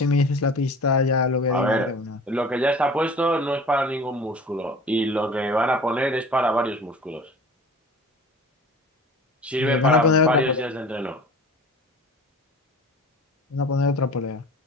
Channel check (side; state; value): both; normal; correlation 0.42